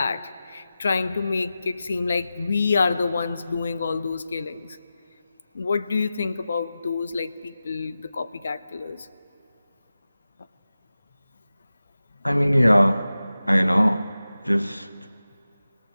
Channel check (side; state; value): both; inverted; correlation -0.94